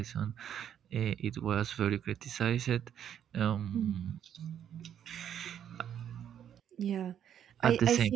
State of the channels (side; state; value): left; quieter; 9.5 dB